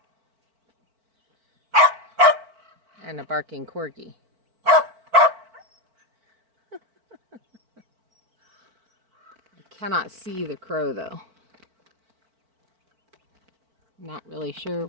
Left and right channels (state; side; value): late; left; 4.5 ms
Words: And a barking corgi. I cannot see the crow though. Not really sure